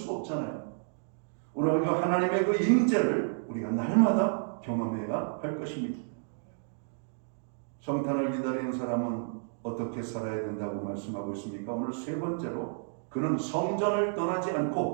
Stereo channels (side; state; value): left; silent; digital silence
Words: 없잖아요. 오늘 우리가 하나님의 그 임재를 우리가 날마다 경험해야 할 것입니다. 성탄을 기다리는 사람은 어떻게 살아야 된다고 말씀하고 있습니까? 오늘 세 번째로 그는 성전을 떠나지